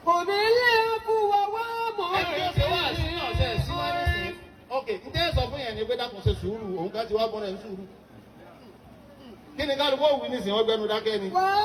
Kóbi àfùwà wà mọ́ ok ǹjẹ́ sọ fún yẹn ni pé dákun ṣe sùúrù òun ká ti wá bọ́ra ẹ̀ ń sùúrù. kí ni kálukú òwú nísìnyí wọ́n gbẹnu dákẹ́ ni.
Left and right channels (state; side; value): identical; both; correlation 1.00